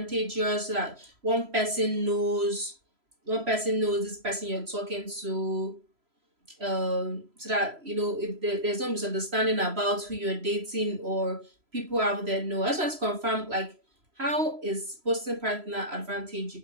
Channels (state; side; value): late; left; 3.0 ms